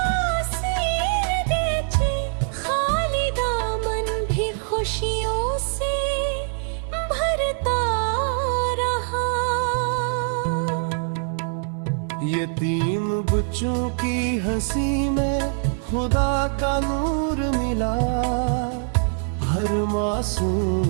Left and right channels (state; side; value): silent; left; 59 dB below the other